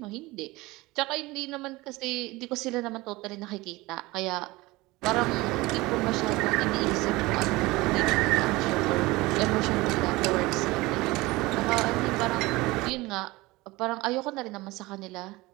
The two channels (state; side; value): quieter; left; 21.1 dB